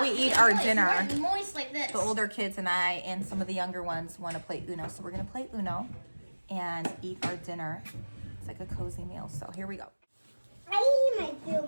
we eat our dinner, Moist like this. the older kids and I and some of the younger ones want to play Uno. So we're going to play Uno and eat our dinner. It's like a cozy meal. So here we go. I eat my food,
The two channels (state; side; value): inverted; both; correlation -1.00